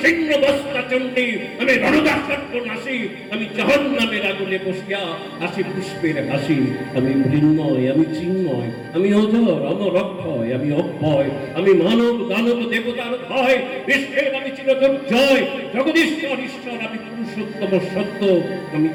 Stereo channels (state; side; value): identical; both; correlation 1.00